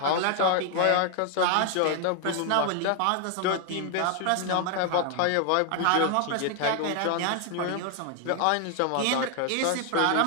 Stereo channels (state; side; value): different; both; correlation 0.00